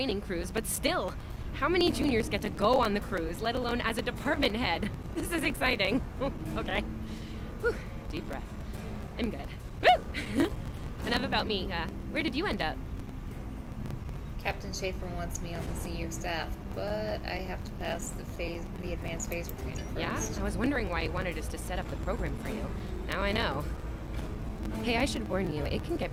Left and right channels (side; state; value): both; identical; correlation 1.00